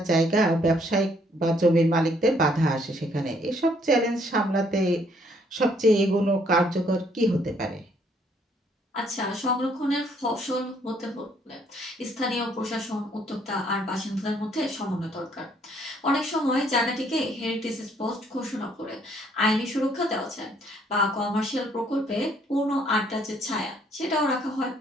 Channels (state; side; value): normal; both; correlation 0.66